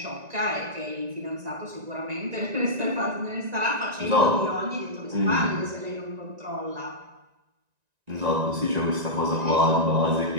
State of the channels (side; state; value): left; late; 1.9 ms